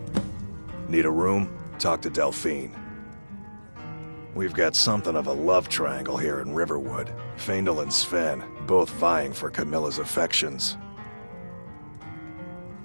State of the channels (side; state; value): both; inverted; correlation -1.00